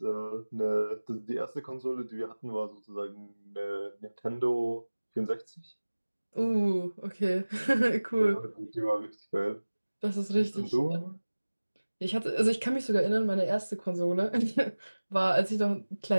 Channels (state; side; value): inverted; both; correlation -1.00